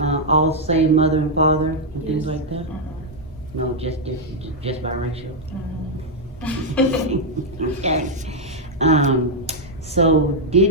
All same mother and father and things Yes. like that? No, just different, just biracial. Okay. So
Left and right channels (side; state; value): both; normal; correlation -0.02